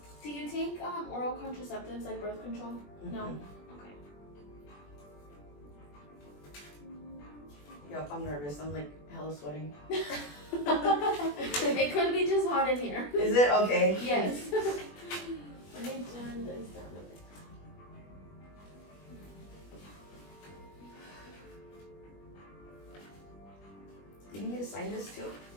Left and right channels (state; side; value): late; right; 21 ms